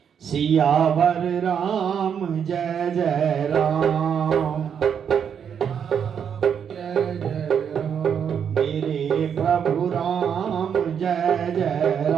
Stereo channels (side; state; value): left; quieter; 7.8 dB